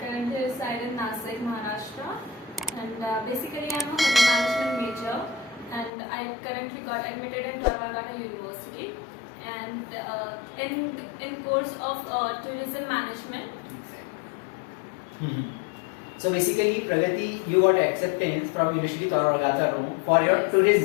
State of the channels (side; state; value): right; drops out; at 5.9 s